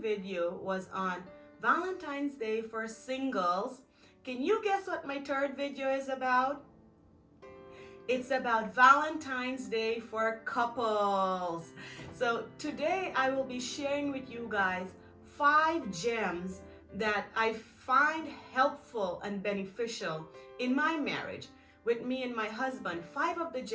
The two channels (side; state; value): both; identical; correlation 1.00